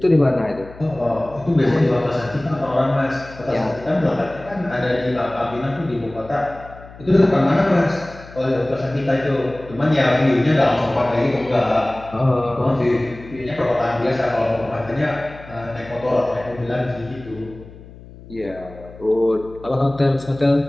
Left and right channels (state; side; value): noise; left; hum, 19 dB below the sound